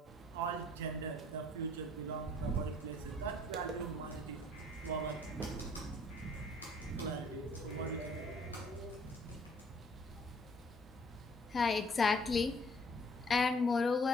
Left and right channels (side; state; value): both; normal; correlation 0.59